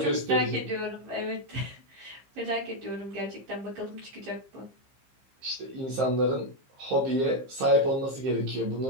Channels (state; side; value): late; left; 15 ms